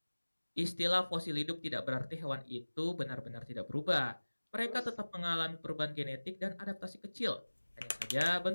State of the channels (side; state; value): both; inverted; correlation -1.00